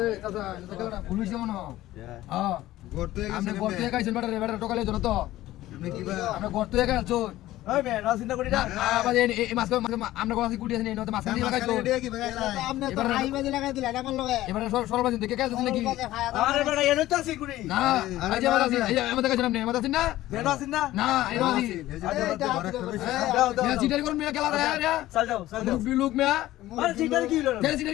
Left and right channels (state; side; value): quieter; right; 15.5 dB